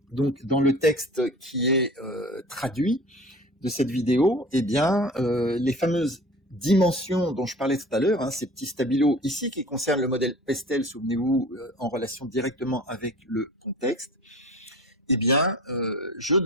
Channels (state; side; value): normal; both; correlation 0.41